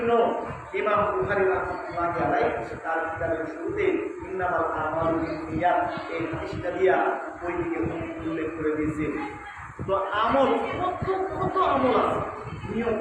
ইমাম বুখারী রাহমাতুল্লাহি আলাইহি তার কিতাবের শুরুতে ইন্নামাল আমালু বিন্নিয়াত এই হাদিসটা দিয়া ওই দিকে উল্লেখ করে দিয়েছে। তো আমল কত আমল আছে, নিয়ম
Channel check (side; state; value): both; identical; correlation 1.00